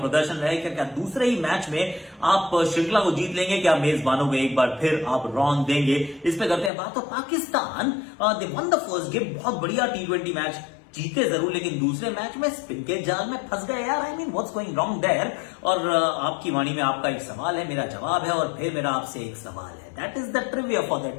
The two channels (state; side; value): drops out; right; at 6.7 s